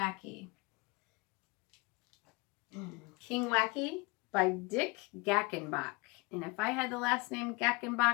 King Wacky by Dick Gackenbach. And if I had the last name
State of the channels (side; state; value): right; quieter; 26.0 dB